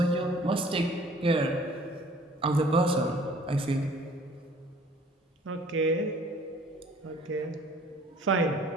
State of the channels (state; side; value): normal; both; correlation 0.54